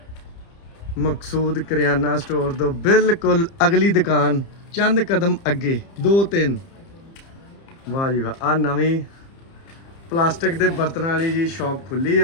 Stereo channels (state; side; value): late; right; 30 ms